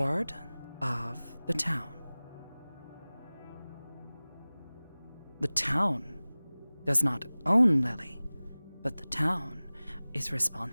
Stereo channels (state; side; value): inverted; both; correlation -0.99